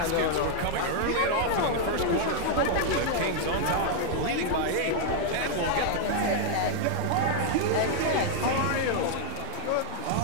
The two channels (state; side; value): different; both; correlation 0.00